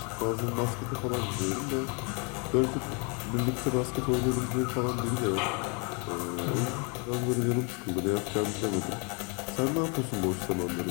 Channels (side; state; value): right; quieter; 33.7 dB